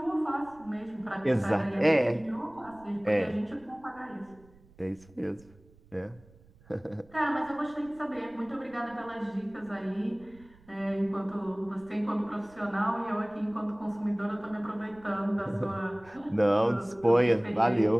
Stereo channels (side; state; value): right; noise; rumble, 26 dB below the sound